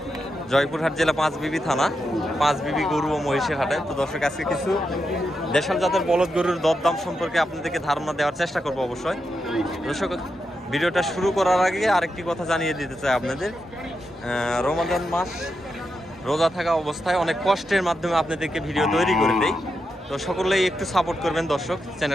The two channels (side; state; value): both; normal; correlation 0.86